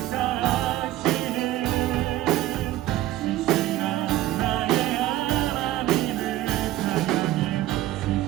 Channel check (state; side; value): quieter; left; 14.9 dB